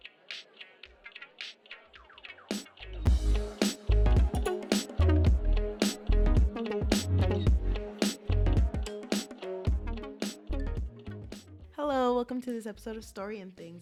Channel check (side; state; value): both; identical; correlation 1.00